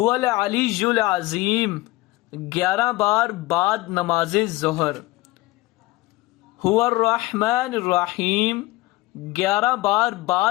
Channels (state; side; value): quieter; right; 20.0 dB